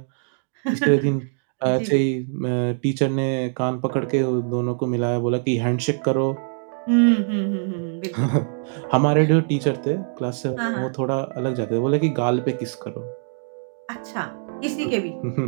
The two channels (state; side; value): silent; left; digital silence